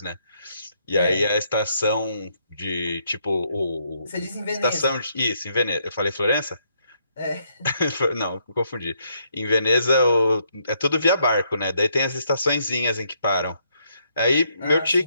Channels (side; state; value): both; inverted; correlation -0.73